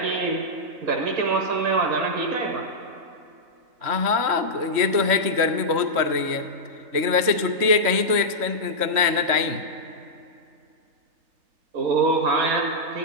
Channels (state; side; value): late; left; 3.1 ms